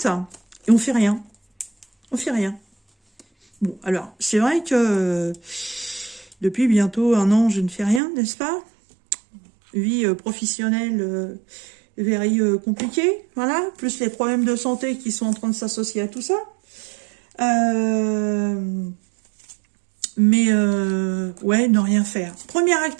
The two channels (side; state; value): left; drops out; at 8.0 s